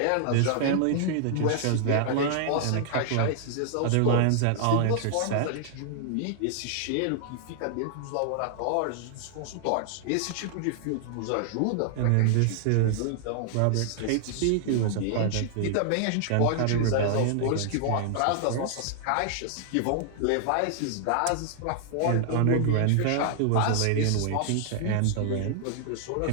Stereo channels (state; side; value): different; both; correlation -0.01